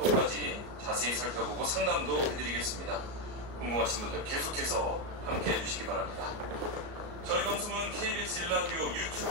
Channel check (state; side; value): late; left; 34 ms